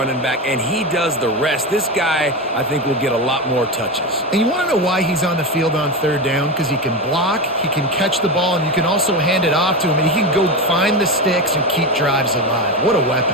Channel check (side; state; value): both; normal; correlation 0.18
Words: back, and he does the rest. This guy, I think, will get a lot more touches. And you want to know why he's on the field on third down? Because he can block, he can catch the ball, and you can also hand it off to him, and he can go find the sticks and keep drives alive. What a